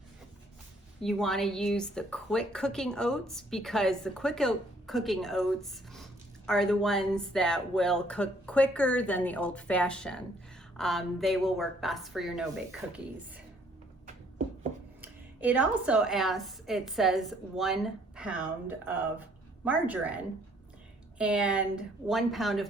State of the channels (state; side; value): normal; both; correlation 0.63